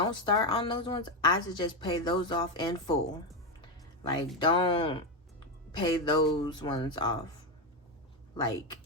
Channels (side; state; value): both; normal; correlation 0.10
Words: start on those ones. I suggest pay those off in full. Like, don't pay those ones off like